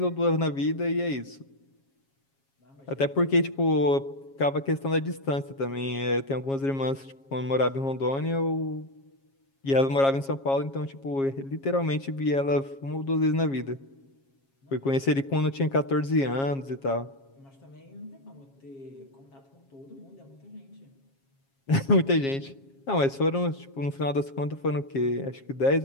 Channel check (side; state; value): right; late; 7.3 ms